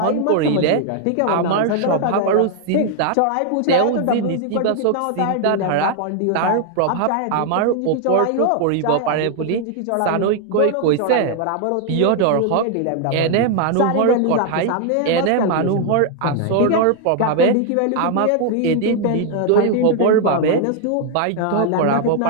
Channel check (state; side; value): different; both; correlation 0.00